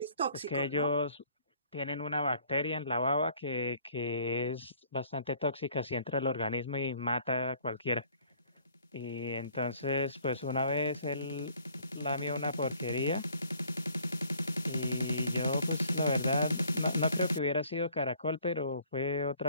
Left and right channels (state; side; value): inverted; both; correlation -0.58